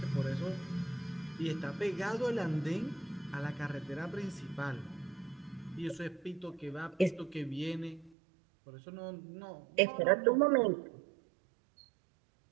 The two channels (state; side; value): drops out; left; at 8.2 s